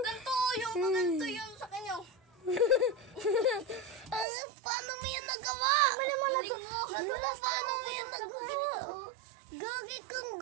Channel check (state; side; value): drops out; left; at 4.2 s